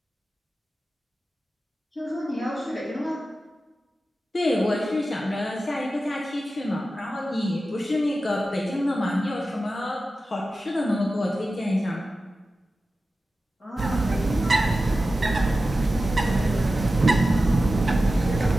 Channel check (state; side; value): normal; both; correlation 0.93